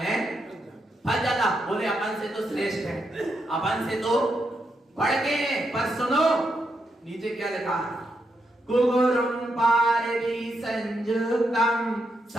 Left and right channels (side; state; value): both; normal; correlation 0.82